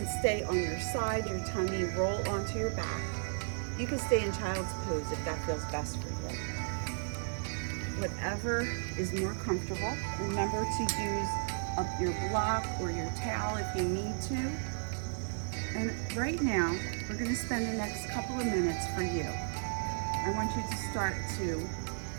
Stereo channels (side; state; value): left; silent; digital silence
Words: stay on your side, your tummy, roll onto your back. You can stay in child's pose if that feels best for you. Whatever is more comfortable. Remember to use up your block or your towel if you need to. And right now, we're gonna spend the next couple of minutes for you. I want you to start to